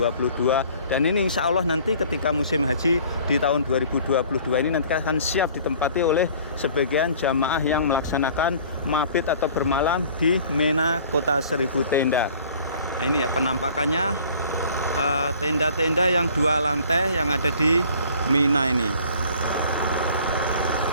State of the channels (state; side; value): inverted; both; correlation -0.51